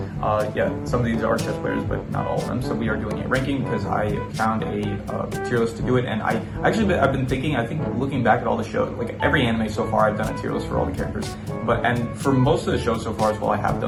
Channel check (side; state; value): both; identical; correlation 1.00